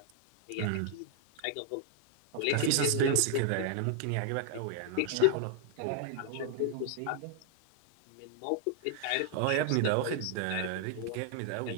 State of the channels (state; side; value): different; both; correlation 0.00